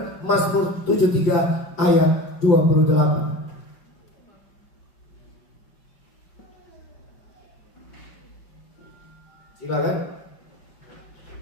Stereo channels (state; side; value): late; right; 4.9 ms